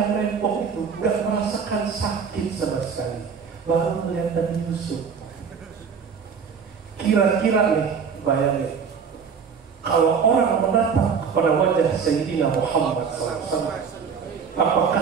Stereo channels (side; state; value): left; quieter; 6.3 dB